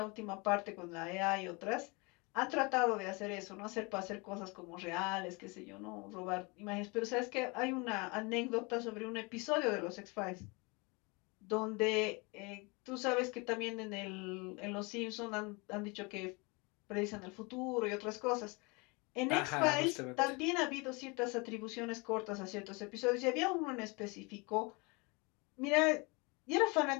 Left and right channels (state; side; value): quieter; right; 28.3 dB